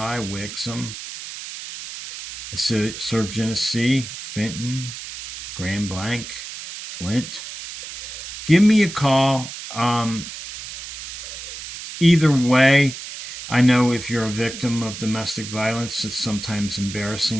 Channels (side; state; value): right; noise; hiss, 10 dB below the sound